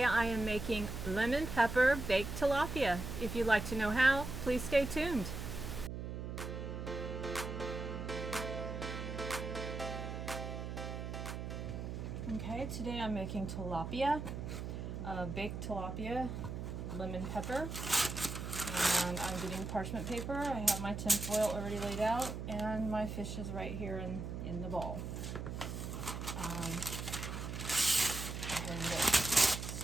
I am making lemon pepper baked tilapia. If you'd like to know how, please stay tuned. Okay, today I'm making tilapia, baked tilapia, lemon pepper, and I'm getting parchment paper. I have my tin foil already laid out and my fish is right here in the bowl. Go ahead and get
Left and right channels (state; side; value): noise; right; hum, 5 dB below the sound